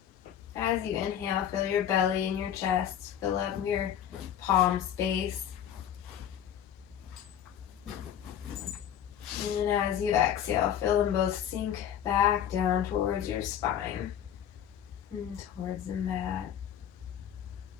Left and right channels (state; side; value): quieter; right; 9.7 dB